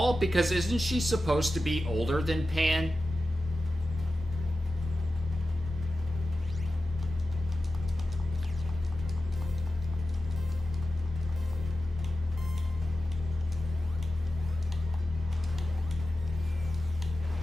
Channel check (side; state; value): both; normal; correlation 0.92